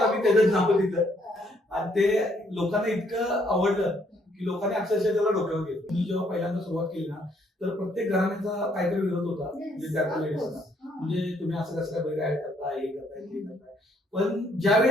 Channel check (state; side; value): normal; both; correlation 0.69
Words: त्याचं नाव दिलं आणि ते लोकांना इतकं आवडलं की लोकांनी अक्षरशः त्याला डोक्यावर घेतलं. मी जेव्हा पहिल्यांदा सुरुवात केली ना तर प्रत्येक घराण्याचा काहीतरी विरोध होता म्हणजे त्या लेडीजचा, म्हणजे तुम्ही असं कसं काय बरं ऍड करताय, हे करताय ते करताय. पण